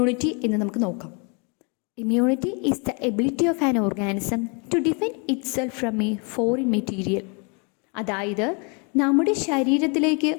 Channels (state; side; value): quieter; right; 34.4 dB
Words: എന്ന് നമുക്ക് നോക്കാം. Immunity is the ability of an organism to defend itself from a foreign material. അതായത് നമ്മുടെ ശരീരത്തിലേക്ക്